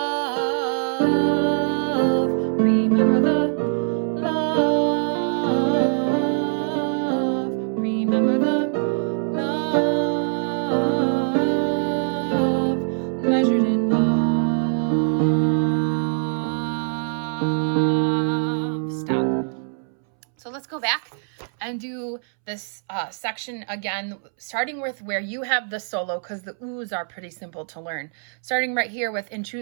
remember the love, remember the love, measured in love. Stop. So let's go back and do this section again, starting with where you have the solo, because the oohs are pretty simple to learn. Starting right here with in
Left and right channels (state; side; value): silent; left; 63 dB below the other